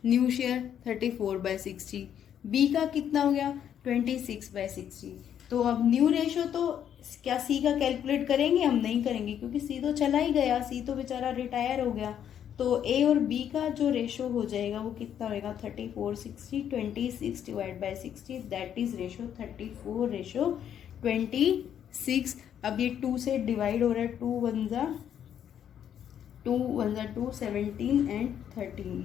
न्यू शेयर? 34/60। बी का कितना हो गया? 26/60। तो अब न्यू रेशो तो क्या सी का कैलकुलेट करेंगे? हम नहीं करेंगे, क्योंकि सी तो चला ही गया, सी तो बेचारा रिटायर हो गया। तो ए और बी का जो रेशो हो जाएगा वो कितना होगा? 34/60, 26/60, दैट इज रेशो 34:26। अब ये 2 से डिवाइड हो रहा है, 2 1 जा 2, 17 एंड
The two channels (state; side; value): quieter; right; 9.4 dB